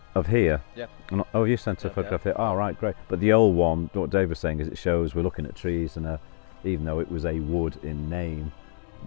Of here? Yeah. Oh, you sent a photograph here. Oh, right, great. But the old one, what Dave was saying is it shows we're looking at trees, and even though it was a wood in name, it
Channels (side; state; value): right; silent; 61 dB below the other